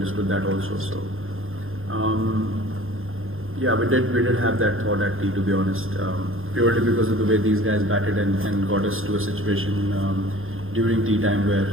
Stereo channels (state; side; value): late; left; 0.60 ms